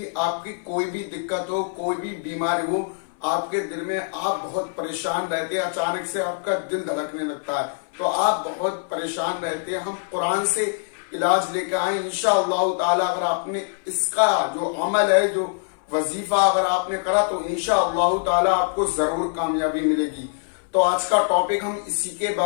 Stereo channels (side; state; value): right; silent; 63 dB below the other